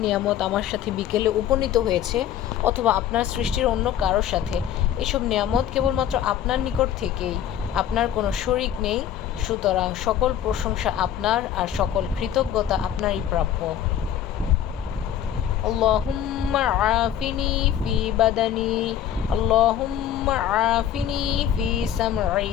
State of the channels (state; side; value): quieter; right; 10.3 dB